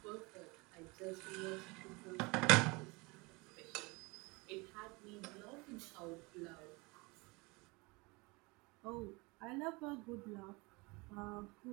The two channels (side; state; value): left; quieter; 26.1 dB